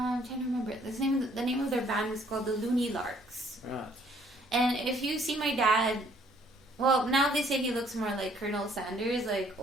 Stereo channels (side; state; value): both; normal; correlation 0.63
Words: trying to remember it. The name of their band was called the Looney Larks. Right. And if you see my dad, well, now they say he looks more like Colonel Sanders, like